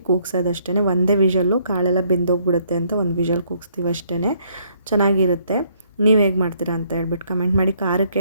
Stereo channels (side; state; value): both; inverted; correlation -0.67